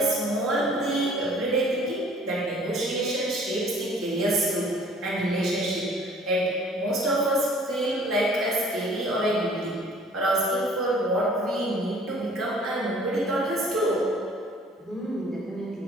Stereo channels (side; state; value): both; normal; correlation 0.53